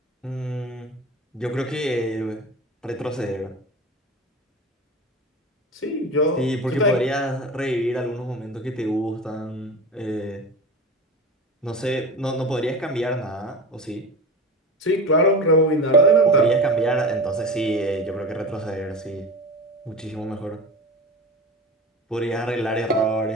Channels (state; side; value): normal; both; correlation 0.30